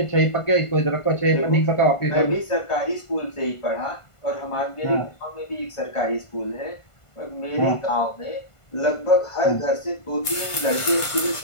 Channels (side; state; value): right; late; 1.5 ms